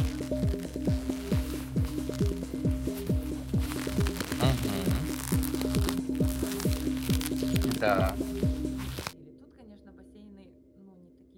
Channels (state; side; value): identical; both; correlation 1.00